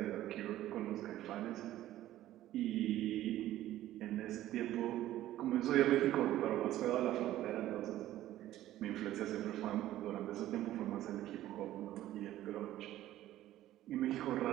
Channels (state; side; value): quieter; left; 14.0 dB